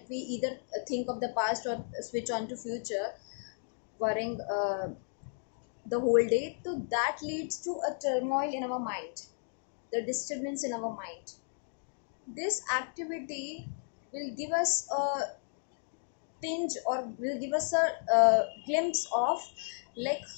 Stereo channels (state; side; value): silent; right; digital silence